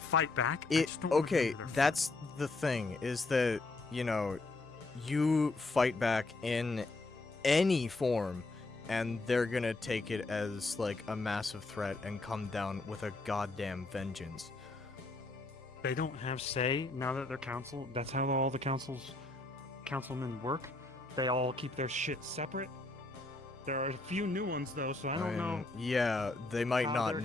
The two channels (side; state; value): right; quieter; 3.1 dB